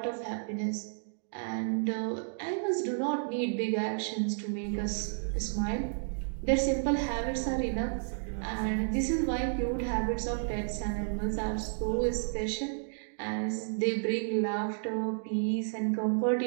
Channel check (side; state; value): left; silent; digital silence